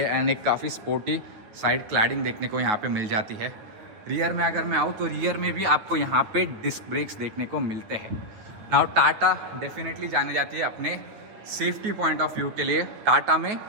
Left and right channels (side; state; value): left; late; 9.1 ms